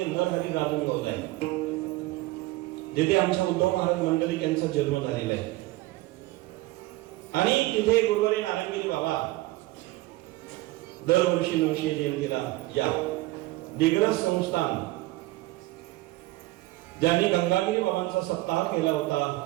नरहरी राजनगाव आहे, जिथे आमच्या उद्धव महाराज मंडलिक यांचा जन्म झालेला आहे. आणि तिथे गुरुवारी नारायणगिरी बाबा दरवर्षी 900 जयंतीला या दिग्रस संस्थान ज्यांनी गंगागिरी बाबांचा सप्ताह केला होता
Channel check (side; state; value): left; quieter; 19.0 dB